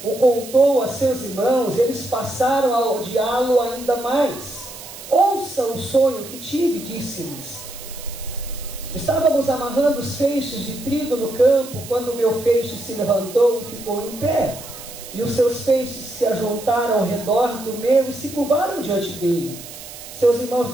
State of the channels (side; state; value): right; noise; hiss, 14 dB below the sound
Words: o contou a seus irmãos, eles passaram a odiá-lo ainda mais. Ouça o sonho que tive, disse-lhes. Estávamos amarrando os feixes de trigo no campo, quando o meu feixe se levantou e ficou em pé. E os seus feixes se ajuntaram ao redor do meu e se curvaram diante dele. Seus irmãos